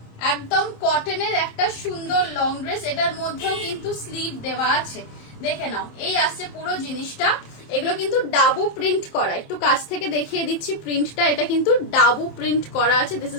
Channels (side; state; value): right; late; 27 ms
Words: একদম কটনের একটা সুন্দর লং ড্রেস। এটার মধ্যেও কিন্তু স্লিভ দেওয়া আছে। দেখে নাও, এই আসছে পুরো জিনিসটা। এগুলো কিন্তু ডাবু প্রিন্ট করা, একটু কাছ থেকে দেখিয়ে দিচ্ছি প্রিন্টটা। এটা কিন্তু ডাবু প্রিন্ট করা আছে, this